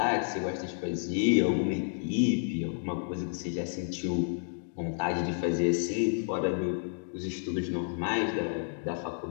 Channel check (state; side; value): silent; right; digital silence